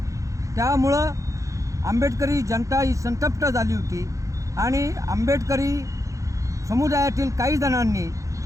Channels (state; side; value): late; left; 0.15 ms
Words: त्यामुळं आंबेडकरी जनता ही संतप्त झाली होती आणि आंबेडकरी समुदायातील काही जणांनी